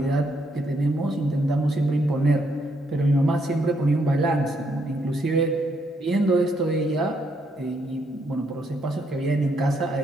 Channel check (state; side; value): normal; both; correlation 0.75